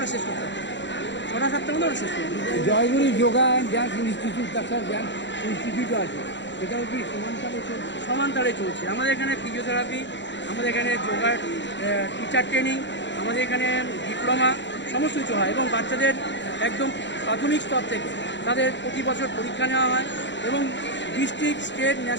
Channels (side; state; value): right; late; 0.53 ms